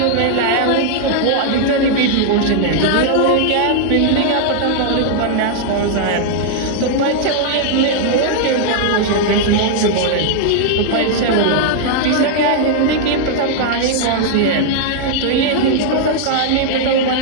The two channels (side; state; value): both; different; correlation -0.01